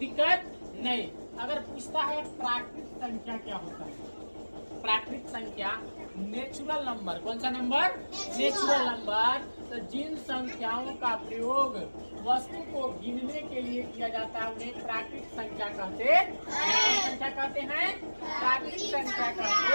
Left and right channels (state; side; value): inverted; both; correlation -1.00